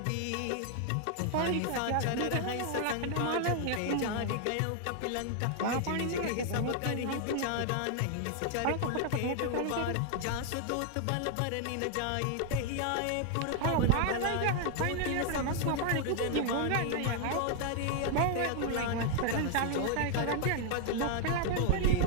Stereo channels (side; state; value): both; different; correlation 0.00